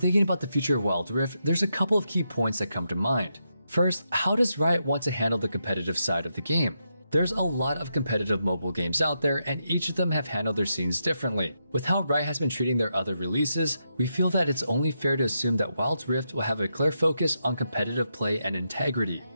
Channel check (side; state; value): both; inverted; correlation -0.83